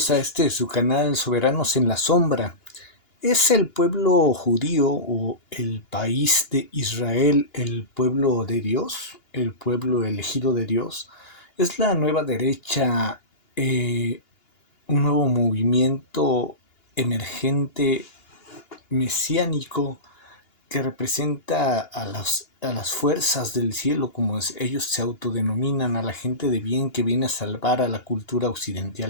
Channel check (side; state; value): right; late; 2.9 ms